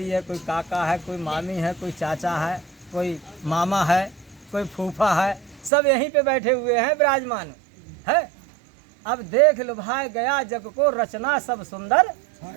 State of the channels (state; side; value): drops out; left; at 5.7 s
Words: है, कोई काका है, कोई मामी है, कोई चाचा है, कोई मामा है, कोई फूफा है, सब यहीं पे बैठे हुए हैं विराजमान है। अब देख लुभाए गया जग को रचना सब सुंदर